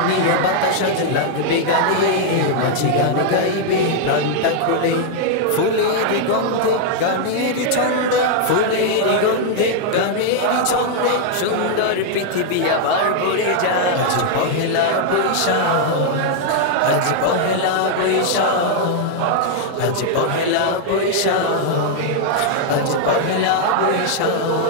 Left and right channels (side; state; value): both; different; correlation -0.01